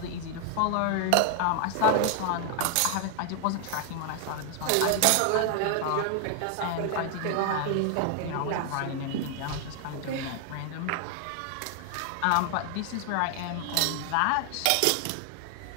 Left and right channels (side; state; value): both; different; correlation 0.00